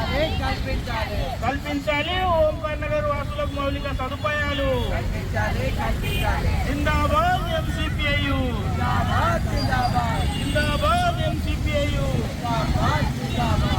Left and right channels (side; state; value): both; identical; correlation 1.00